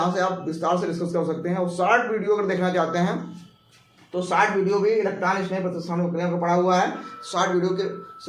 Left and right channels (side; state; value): both; identical; correlation 1.00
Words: से आप विस्तार से डिस्कस कर सकते हैं। और शॉर्ट वीडियो अगर देखना चाहते हैं तो शॉर्ट वीडियो भी इलेक्ट्रॉन स्नेही प्रतिस्थापन क्रिया को पढ़ा हुआ है, शॉर्ट वीडियो के